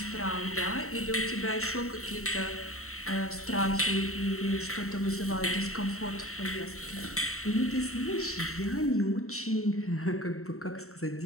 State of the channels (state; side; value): late; right; 0.63 ms